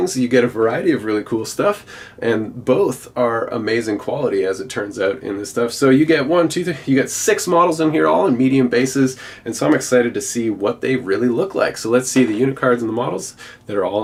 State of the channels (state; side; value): identical; both; correlation 1.00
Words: you get a variety of really cool stuff, and both are amazing quality as it turns out in this stuff. So you get you get 6 models in here, all in medium bases, and so I'm excited to see what they really look like. So let's see the unit cards and the models that are